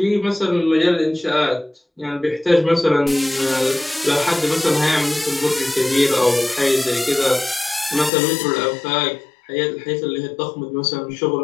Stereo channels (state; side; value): drops out; right; at 8.1 s